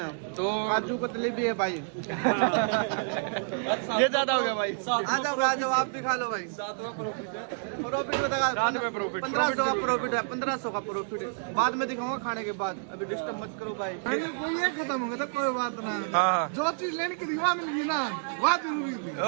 तो काजू कतली भी है भाई। ये ज्यादा हो गया भाई। आ जाओ आप भी खा लो भाई। प्रॉफिट बता, रात में प्रॉफिट 1500 का प्रॉफिट है, 1500 का प्रॉफिट है। बाद में दिखाऊंगा खाने के बाद, अभी डिस्टर्ब मत करो भाई। कोई ये खत्म हो गया तो कोई बात ना। हाँ जो चीज लेने की रिवा मिल गई ना, वह जरूरी थी।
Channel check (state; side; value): silent; left; digital silence